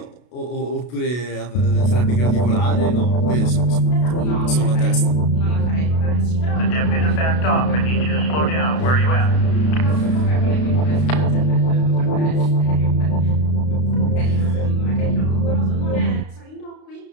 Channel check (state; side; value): late; right; 32 ms